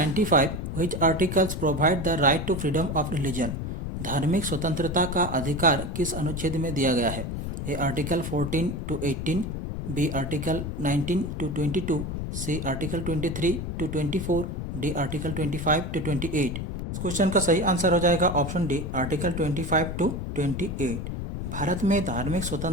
which articles provide the right to freedom of religion. धार्मिक स्वतंत्रता का अधिकार किस अनुच्छेद में दिया गया है। A article 14 to 18, B article 19 to 22, C article 23 to 24, D article 25 to 28। इस क्वेश्चन का सही आंसर हो जाएगा option D article 25 to 28। Bharat में धार्मिक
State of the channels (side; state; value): left; noise; rumble, 5 dB below the sound